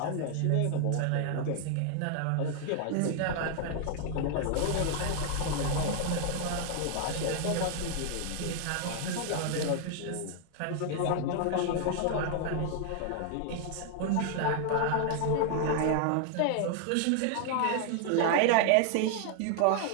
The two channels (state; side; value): different; both; correlation 0.00